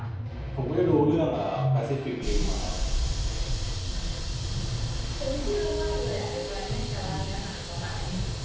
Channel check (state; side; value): identical; both; correlation 1.00